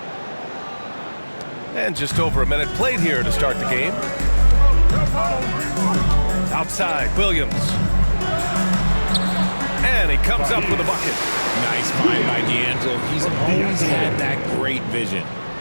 And just over a minute played here to start the game. Outside, Williams. And he comes up with a bucket. Nice find by D'Angelo. He's always had that great vision.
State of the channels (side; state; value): both; inverted; correlation -1.00